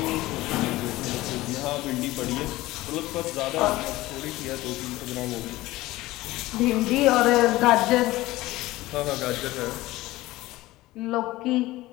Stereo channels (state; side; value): quieter; right; 18.0 dB